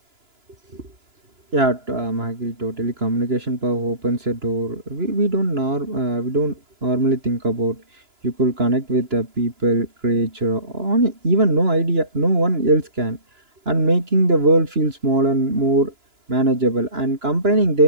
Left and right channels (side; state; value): left; late; 2.9 ms